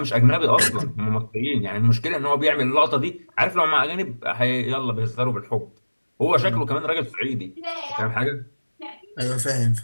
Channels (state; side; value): inverted; both; correlation -1.00